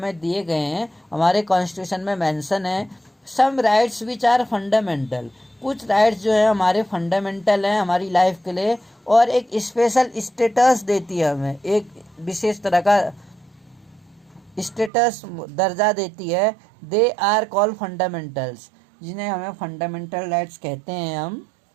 दिए गए हैं हमारे कॉन्स्टिट्यूशन में मेंशन है। सम राइट्स विच आर फंडामेंटल, कुछ राइट्स जो है हमारे फंडामेंटल हैं हमारी लाइफ के लिए, और एक स्पेशल स्टेटस देती है हमें, एक विशेष तरह का स्टेटस दर्जा देती है। दे आर कॉल्ड फंडामेंटल्स, जिन्हें हमें फंडामेंटल राइट्स कहते हैं हम।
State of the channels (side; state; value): left; drops out; at 14.9 s